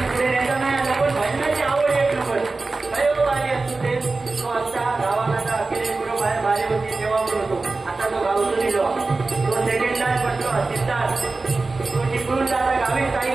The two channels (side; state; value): left; quieter; 3.6 dB